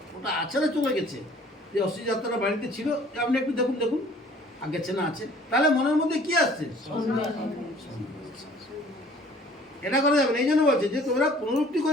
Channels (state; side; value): normal; both; correlation 0.53